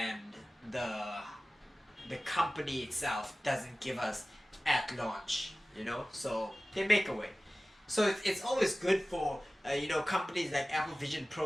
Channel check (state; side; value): normal; both; correlation 0.97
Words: the company itself doesn't give us at launch, so they make a way. So it's always good for companies like Apple Vision